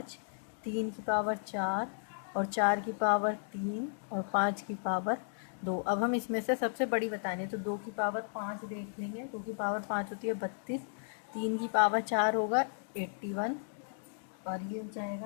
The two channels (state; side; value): silent; right; digital silence